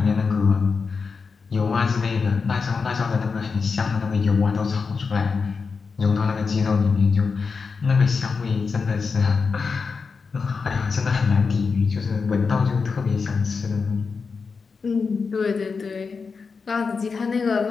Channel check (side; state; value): right; quieter; 5.0 dB